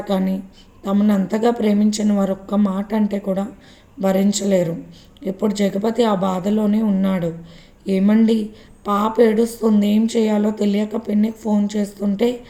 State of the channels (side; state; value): both; identical; correlation 1.00